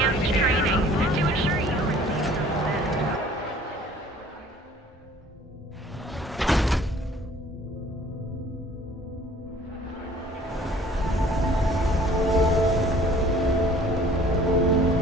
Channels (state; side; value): normal; both; correlation 0.52